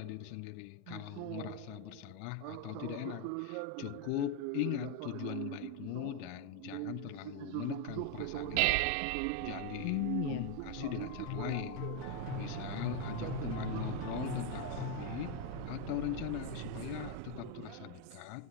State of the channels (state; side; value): different; both; correlation 0.01